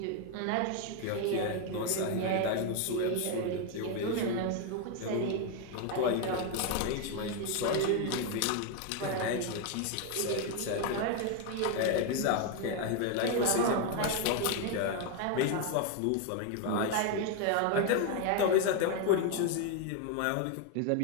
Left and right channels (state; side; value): different; both; correlation 0.01